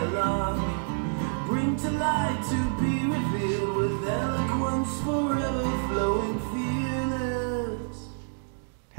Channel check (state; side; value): silent; left; digital silence